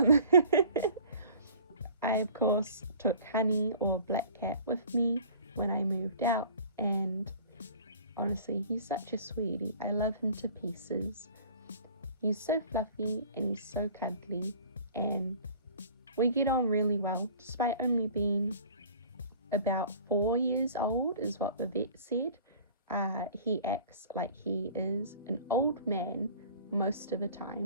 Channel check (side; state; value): both; inverted; correlation -0.47